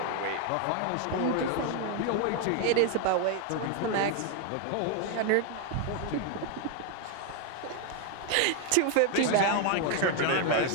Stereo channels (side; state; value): both; different; correlation 0.01